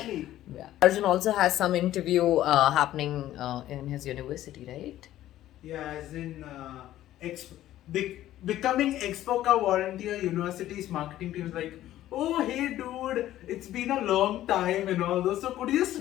on. Yeah. Arjun also has some interview happening in his university, right? Yeah, as in becoming Expoca volunteer university's marketing team is like, oh hey dude, it's been a long time and all those. So could you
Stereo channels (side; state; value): right; quieter; 13.6 dB